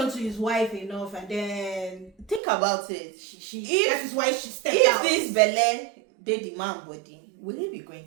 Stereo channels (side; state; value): left; drops out; at 2.4 s